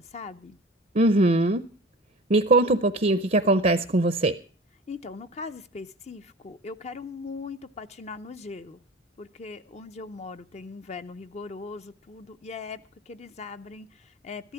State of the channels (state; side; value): normal; both; correlation 0.39